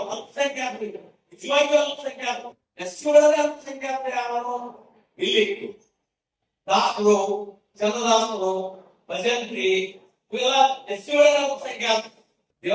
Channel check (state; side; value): identical; both; correlation 1.00